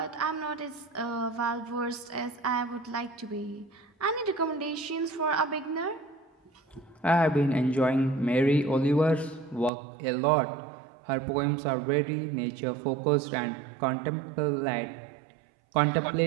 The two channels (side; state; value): left; drops out; at 9.7 s